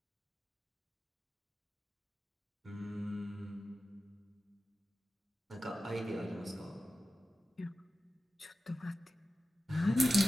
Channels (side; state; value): both; normal; correlation 0.93